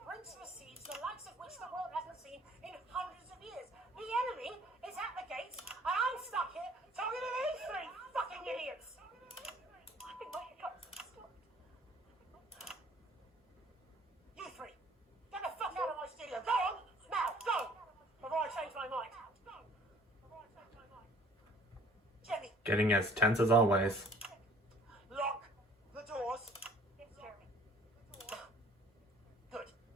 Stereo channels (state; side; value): normal; both; correlation 0.55